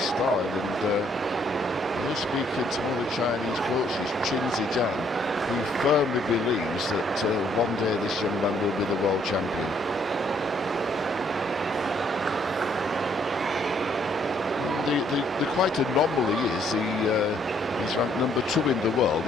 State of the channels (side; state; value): both; normal; correlation 0.67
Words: style. And I was speaking to one of the Chinese coaches, Qin Zijian, who firmly believes that one day this young man will be the world champion. The quite anomaly is he's ranked number 2 in the world.